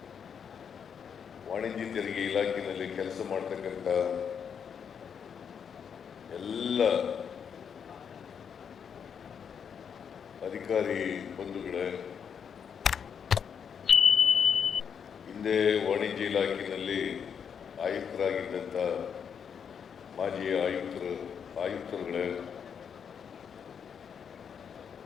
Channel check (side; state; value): right; quieter; 7.3 dB